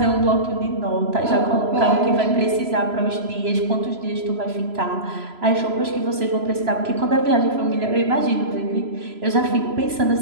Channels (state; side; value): late; left; 3.0 ms